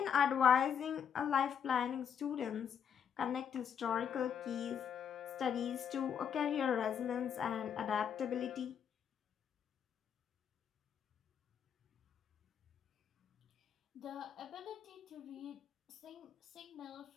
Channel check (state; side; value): quieter; right; 7.9 dB